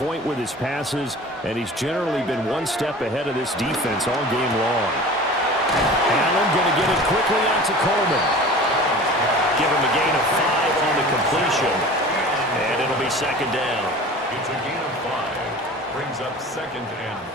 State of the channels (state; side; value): normal; both; correlation 0.40